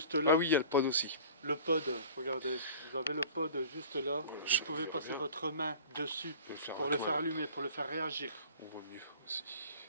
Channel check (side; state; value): both; inverted; correlation -0.43